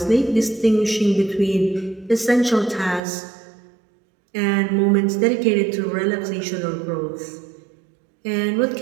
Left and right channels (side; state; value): left; drops out; at 3.0 s